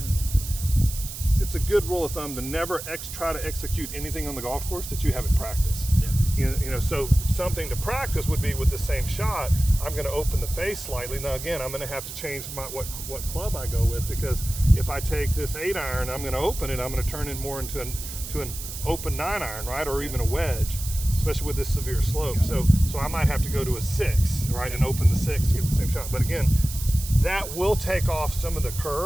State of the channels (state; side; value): noise; right; hiss, 9 dB below the sound